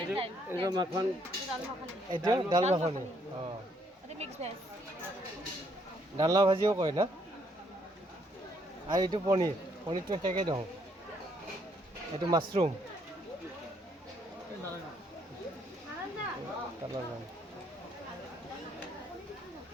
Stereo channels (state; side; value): normal; both; correlation 0.70